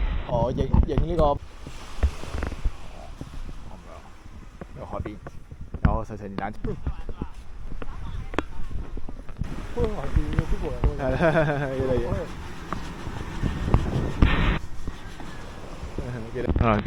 我影呢個有海邊，有細細電單車。係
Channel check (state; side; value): identical; both; correlation 1.00